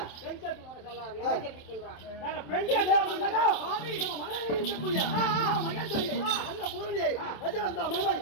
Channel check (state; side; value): late; right; 27 ms